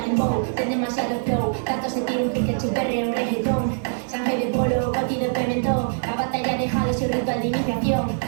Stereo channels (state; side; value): silent; left; 63 dB below the other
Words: en bow, ten demasiado flow. Tanto se tira un pique chuperre un reggaetón. Sangre de polo, coti de pimentón. La batalla dejado su ritual de iniciación.